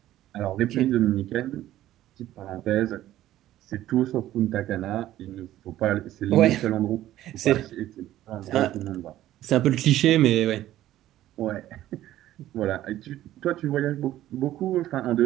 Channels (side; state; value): left; quieter; 13.8 dB